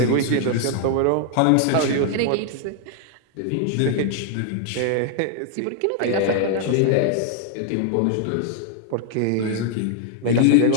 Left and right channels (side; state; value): both; different; correlation 0.00